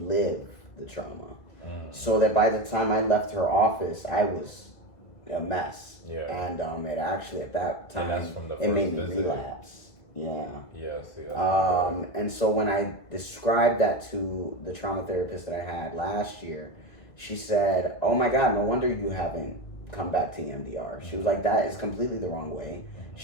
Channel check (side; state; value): right; late; 2.2 ms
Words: the trauma. So that by the time I left her office, I was a mess. Yeah. And it actually at that time, And that's from the it made first me visit? relapse. Yeah. Yes. And so when I described that to the trauma therapist that I had last year, she said, "Oh my God, no wonder you haven't come back to EMDR." She was like, "That is completely the wrong way.